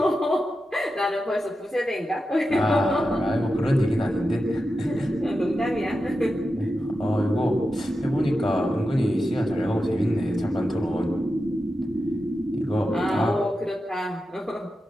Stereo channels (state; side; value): normal; both; correlation 0.90